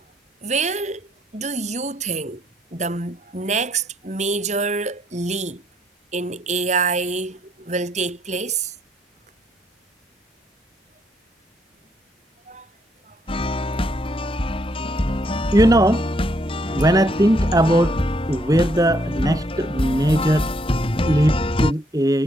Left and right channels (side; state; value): both; normal; correlation 0.72